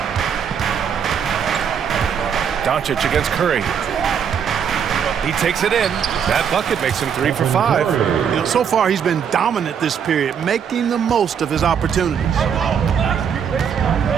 Doncic against Curry. He takes it in. That bucket makes him 3 for 5. You know, so far he's been dominant this period, making the most of his opportunities.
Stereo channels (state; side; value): quieter; left; 7.6 dB